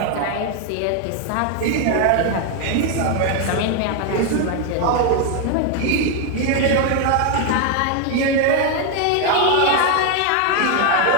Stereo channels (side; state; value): both; different; correlation 0.01